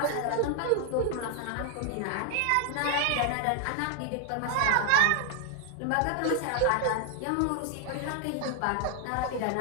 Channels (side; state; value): both; different; correlation 0.00